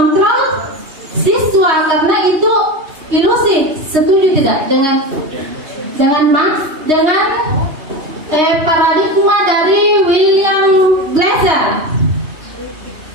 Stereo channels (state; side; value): late; left; 3.2 ms